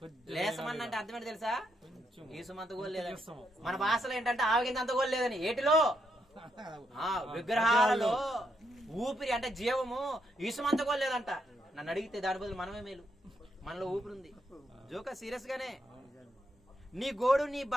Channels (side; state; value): both; normal; correlation 0.79